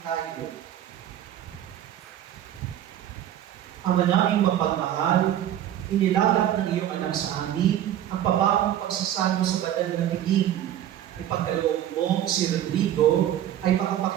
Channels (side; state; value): left; quieter; 11.4 dB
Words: tayo. Ama naming mapagmahal, inilatag ng iyong anak sa amin ang pababong pagsasalo sa banal na piling. Ipagkaloob mo si Rodrigo ay